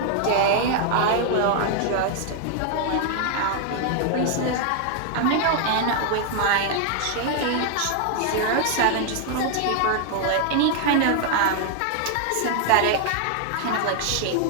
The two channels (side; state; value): both; different; correlation 0.00